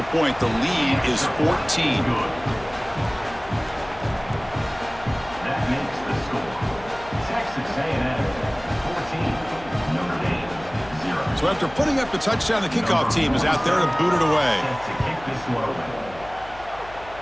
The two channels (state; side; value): noise; left; hum, 19 dB below the sound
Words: point, the lead is 14. That makes the score. Texas A&M 14, Notre Dame 0. So after putting up the touchdown, the kickoff team is out there to boot it away. To kick this one away.